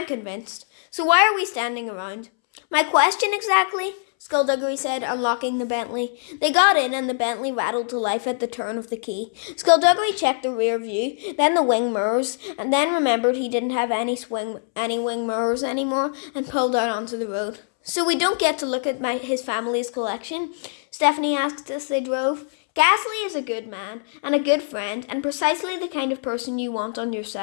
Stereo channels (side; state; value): right; silent; 63 dB below the other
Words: convinced. So why are we standing around? My question exactly? Skulduggery said, unlocking the Bentley. They got in and the Bentley rattled to life at the turn of the key. Skulduggery checked the rear view, then the wing mirrors, and then remembered he didn't have any wing mirrors anymore and pulled out onto the road. So we don't get to look at his family's collection? Stephanie asked as they drove. Ghastly is a good man and a good friend and precisely the kind of person you want on your